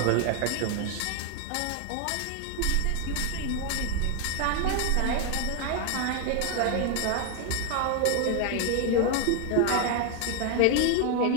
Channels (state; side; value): different; both; correlation 0.01